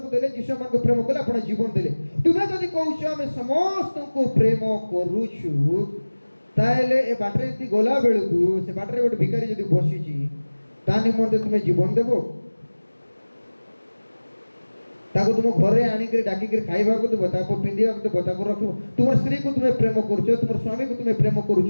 को देले यीशु मान को प्रेम कले अपना जीवन देले। तुमे जदि कहउछ हम समस्त को प्रेम करूछु ताले ए बाटरे ती गोला बेलकु से बाटरे गोटे भिखारी जदि बसिची ता निमंते तुमे जीवन देबो ताको तुम घरे आनी के डाकी के खाइबा को देबो ताको पिंदिया को देबो ताको रखो तुम स्त्री को तुमे प्रेम करूछ तुम स्वामी को तुमे प्रेम करूछ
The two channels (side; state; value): both; inverted; correlation -1.00